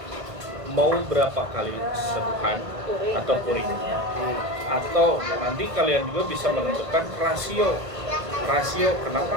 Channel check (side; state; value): left; late; 1.5 ms